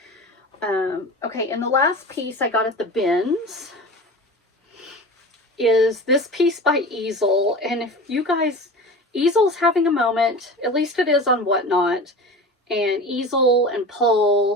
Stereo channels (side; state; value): both; normal; correlation 0.34